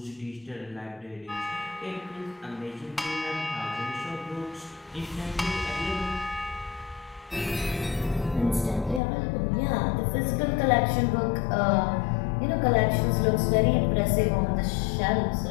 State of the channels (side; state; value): right; drops out; at 9.0 s